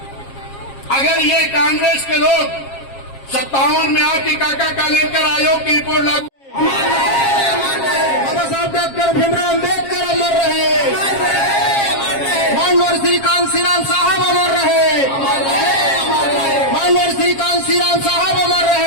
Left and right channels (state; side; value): late; right; 7.4 ms